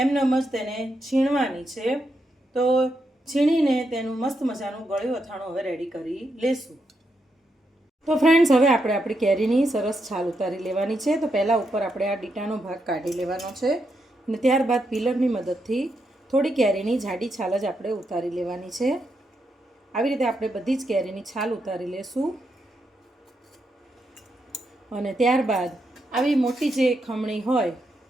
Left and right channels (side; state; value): both; normal; correlation 0.82